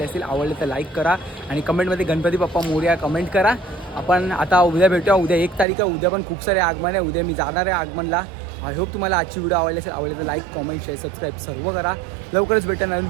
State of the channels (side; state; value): left; drops out; at 5.7 s